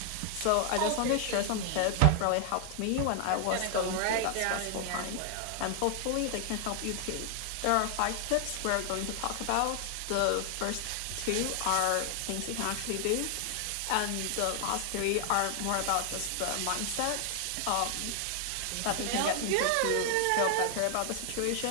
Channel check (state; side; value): different; both; correlation 0.00